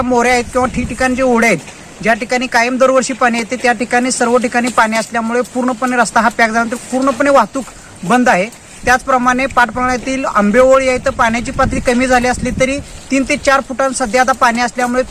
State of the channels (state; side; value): identical; both; correlation 1.00